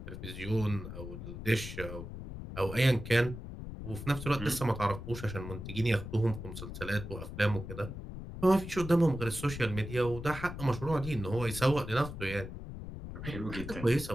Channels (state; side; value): noise; left; rumble, 9 dB below the sound